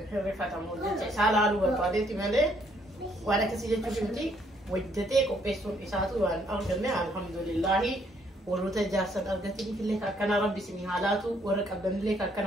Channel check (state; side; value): normal; both; correlation 0.69